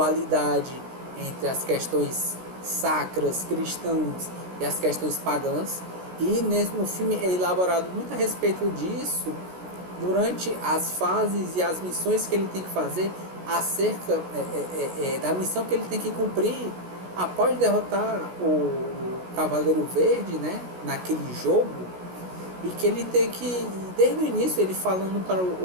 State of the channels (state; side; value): late; left; 16 ms